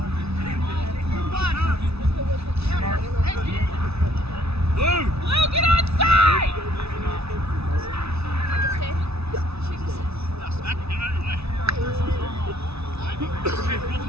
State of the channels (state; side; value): late; left; 0.79 ms